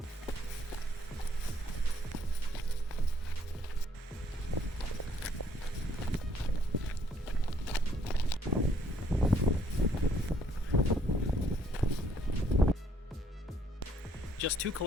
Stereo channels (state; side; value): normal; both; correlation 0.66